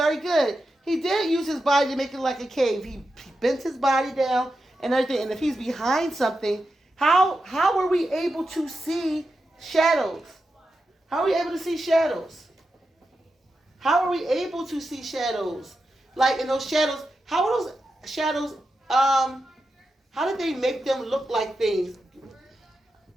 good. He did use his body to make it like a cave. He bent his body down and everything. And if he's behind something, how were we able to see shadows? How are we able to see shadows? How are we able to see shadows? Like in those shadows, how are those shadows, how did they make them look like things?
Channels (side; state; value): both; normal; correlation 0.89